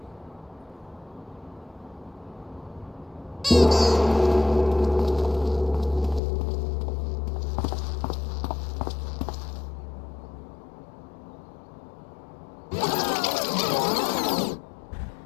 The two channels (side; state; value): right; drops out; at 6.2 s